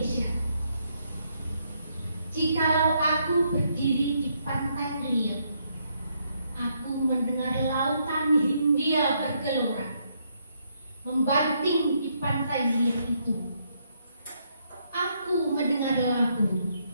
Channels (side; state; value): both; inverted; correlation -0.75